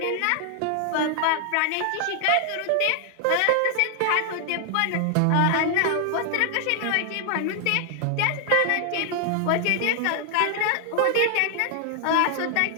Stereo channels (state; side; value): different; both; correlation 0.00